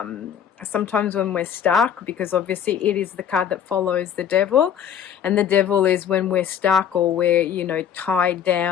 sometimes when we're stuck, because obviously it is the card that follows the devil, and the devil is when we're stuck or we're, you know, tied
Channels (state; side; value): quieter; right; 8.7 dB